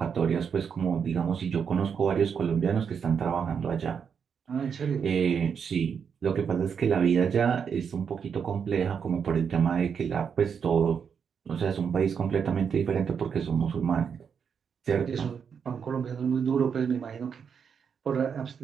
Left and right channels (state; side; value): quieter; left; 6.9 dB